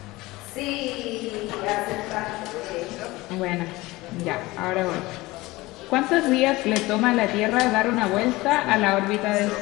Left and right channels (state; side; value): quieter; right; 20.3 dB